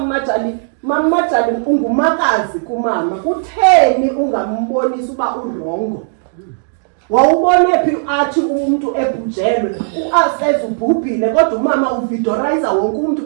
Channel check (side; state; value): left; silent; digital silence